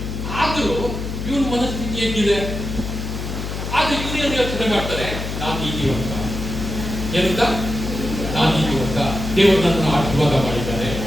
ಆದ್ರೂ ಇವನ್ ಮನಸ್ಥಿತಿ ಹೇಗಿದೆ? ಆದ್ರೆ ಇವನು ಏನು ಯೋಚನೆ ಮಾಡ್ತಾರೆ? ನಾನು ನೀತಿವಂತ. ಏನಂತ? ನಾನು ನೀತಿವಂತ. ದೇವರು ನನ್ನನ್ನು ಆಶೀರ್ವಾದ ಮಾಡಿದ್ದಾರೆ.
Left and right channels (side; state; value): left; noise; hum, 5 dB below the sound